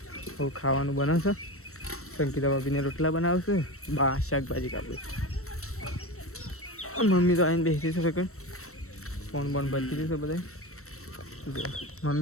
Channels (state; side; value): late; right; 0.63 ms